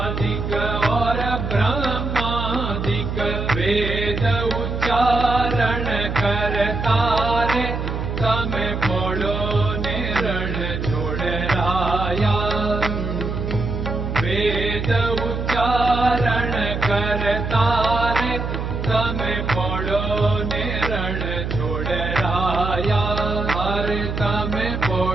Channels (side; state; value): right; noise; hum, 3 dB below the sound